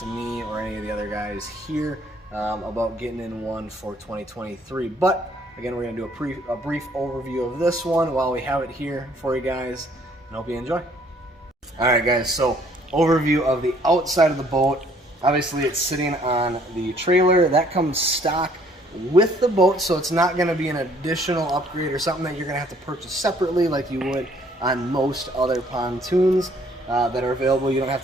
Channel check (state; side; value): normal; both; correlation 0.61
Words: me or any of the other guys here about getting in one for 2023. But again, we're going to do a brief overview of this one while we have it here for you guys, and hope you enjoy. Alright guys, so overview of the outside of the boat. Obviously it's sitting on the trailer. That comes stock with the boat, so it's not going to be an additional upgrade or something that you're going to have to purchase separately like you would on most other pontoons that are available. You don't have